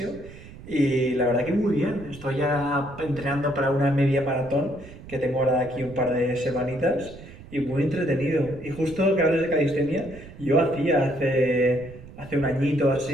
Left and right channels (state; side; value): noise; right; rumble, 17 dB below the sound